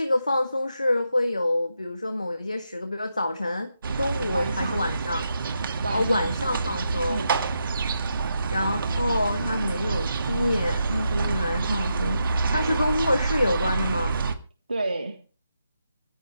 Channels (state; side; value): inverted; both; correlation -0.83